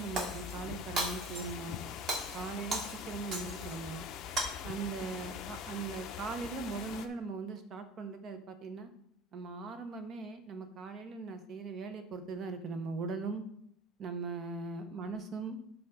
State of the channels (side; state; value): both; normal; correlation 0.40